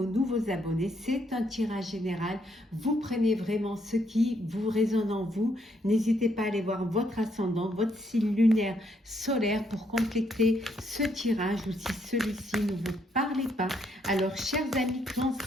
nouveaux abonnés. C'est un tirage général. Vous prenez vraiment ce qui vous résonne en vous. N'hésitez pas à aller voir votre ascendant, votre signe lunaire solaire pour compléter ce tirage ou si celui-ci ne vous parlait pas. Alors chers amis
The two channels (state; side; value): normal; both; correlation 0.73